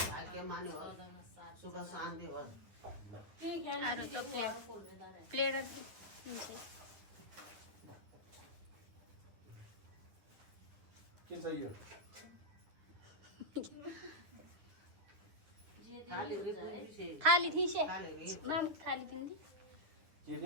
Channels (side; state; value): left; late; 9.8 ms